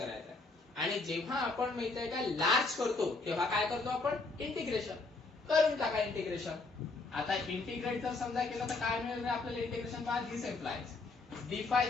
आहे. आणि जेव्हा आपण माहित आहे का लार्ज करतो तेव्हा काय करतो आपण, इंटिग्रेशन करून टाका. इंटिग्रेशन आता इंटिग्रेट जर समजा केलं तर काय मिळेल आपल्याला, इंटिग्रेशन बाय दिस एम्प्लाइज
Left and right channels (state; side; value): quieter; right; 3.6 dB